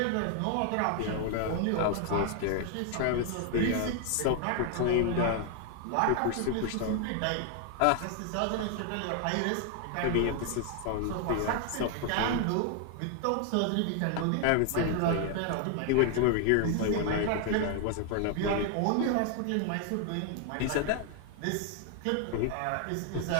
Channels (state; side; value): different; both; correlation 0.00